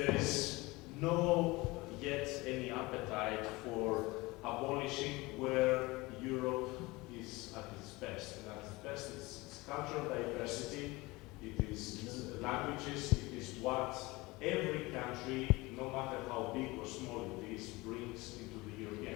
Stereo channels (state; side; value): quieter; right; 22.3 dB